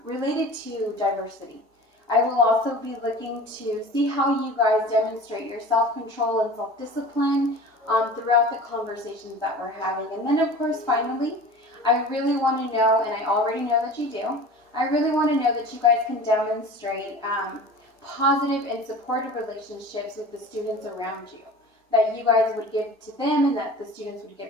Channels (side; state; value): both; normal; correlation 0.39